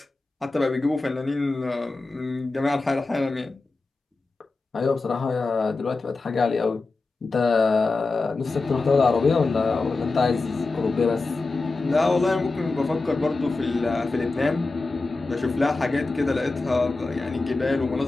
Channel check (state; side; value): quieter; right; 3.6 dB